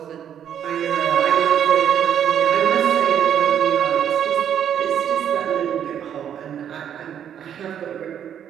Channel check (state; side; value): quieter; left; 9.3 dB